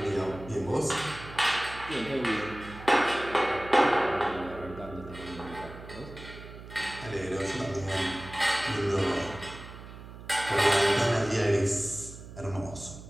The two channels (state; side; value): noise; right; hum, 15 dB below the sound